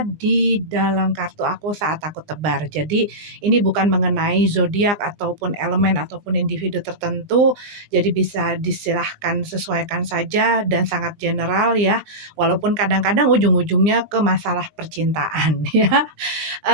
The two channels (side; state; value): left; late; 20 ms